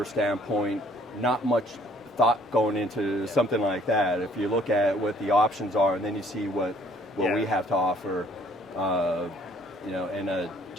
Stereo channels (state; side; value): normal; both; correlation 0.60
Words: standpoint, not much thought going into something like that. If you look at what the options are, and then you see what we have to offer, and